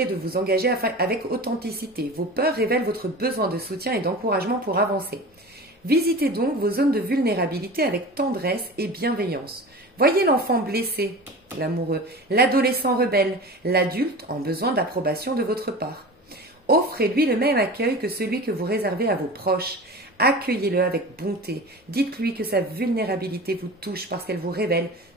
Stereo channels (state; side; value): normal; both; correlation 0.34